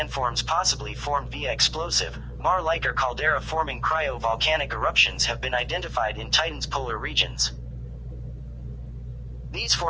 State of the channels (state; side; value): identical; both; correlation 1.00